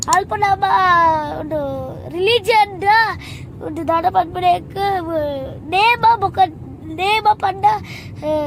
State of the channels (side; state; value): both; identical; correlation 1.00